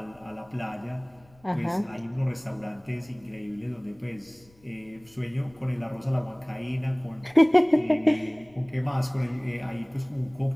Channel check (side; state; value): left; noise; rumble, 29 dB below the sound